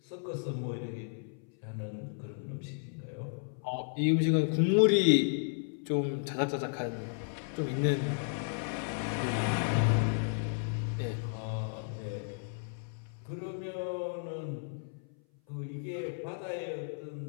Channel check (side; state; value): right; silent; 55 dB below the other